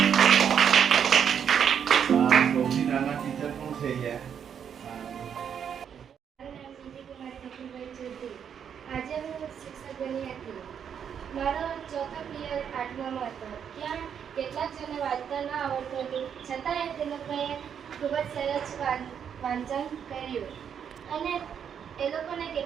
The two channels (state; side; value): quieter; left; 8.0 dB